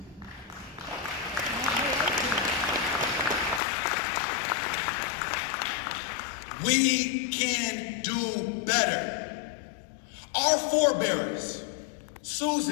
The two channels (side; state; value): right; drops out; at 3.6 s